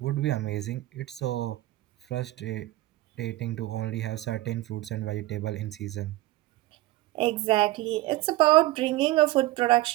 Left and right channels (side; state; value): left; quieter; 17.3 dB